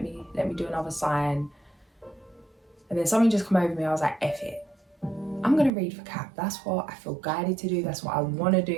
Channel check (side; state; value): left; drops out; at 5.7 s